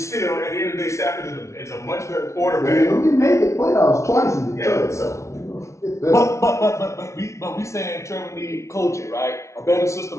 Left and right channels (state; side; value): late; right; 0.14 ms